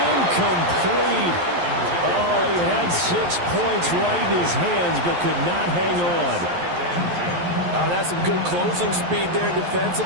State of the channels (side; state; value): left; late; 11 ms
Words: Oh, he had 6 points right in his hands but could not hang on. Oh, that's some good closing speed there